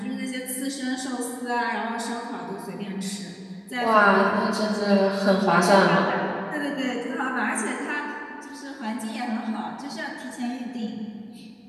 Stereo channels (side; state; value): both; identical; correlation 1.00